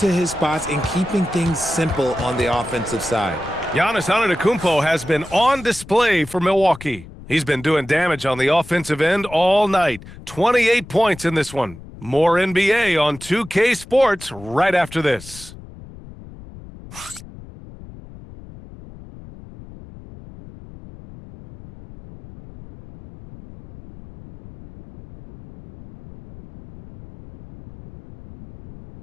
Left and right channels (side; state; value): left; noise; rumble, 17 dB below the sound